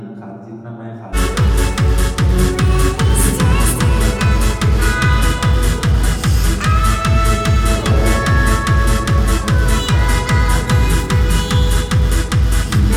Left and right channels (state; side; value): identical; both; correlation 1.00